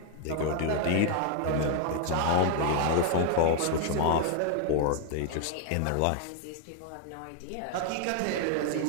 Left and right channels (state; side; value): different; both; correlation 0.01